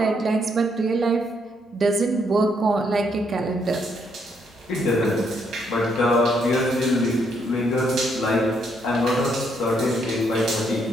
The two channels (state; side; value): normal; both; correlation 0.73